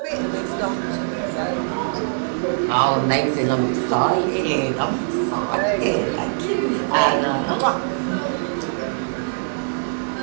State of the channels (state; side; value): silent; left; 64 dB below the other